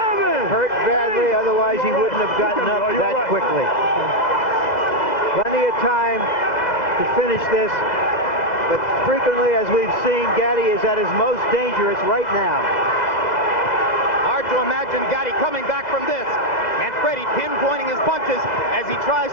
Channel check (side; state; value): right; late; 2.0 ms